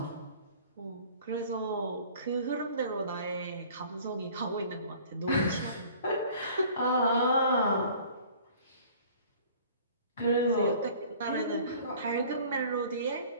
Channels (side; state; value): both; inverted; correlation -0.50